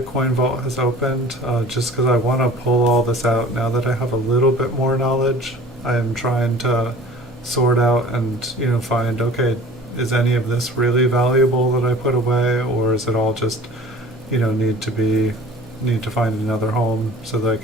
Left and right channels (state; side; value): normal; both; correlation 0.45